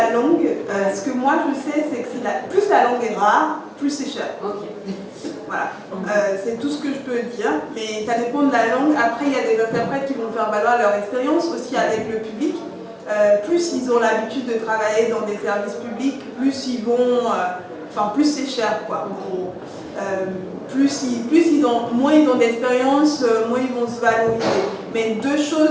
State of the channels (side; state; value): both; identical; correlation 1.00